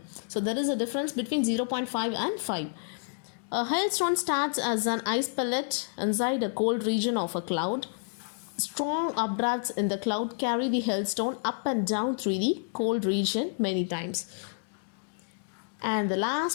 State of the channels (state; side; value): silent; right; digital silence